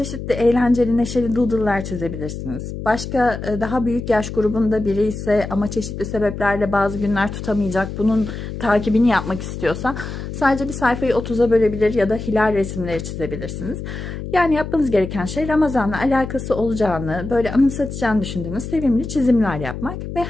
eğlenceli, neşeli doodle'lar çizebilirsiniz. Başka daha büyük yaş grubunda biri ise ama çeşitli sebeplerle bazı günler tutamayacak, bunun takibini yapmak istiyorsa sadece bir sayfayı 30'a bölebilir ya da hilal resimleri çizebilirsiniz. Yani yapmanız gereken şey Ramazan'la alakası olacağını, böyle anımsatacağını düşündüğünüz sevimli çizimler yapmak ve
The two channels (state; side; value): noise; left; hum, 8 dB below the sound